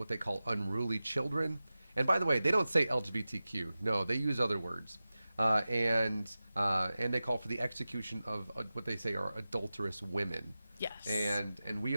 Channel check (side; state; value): both; inverted; correlation -0.95